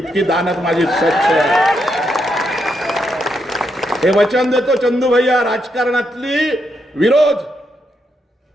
दानत माझी स्वच्छ आहे. हे वचन देतो चंदू भैया. राजकारणातली विरोध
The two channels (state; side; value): normal; both; correlation 0.80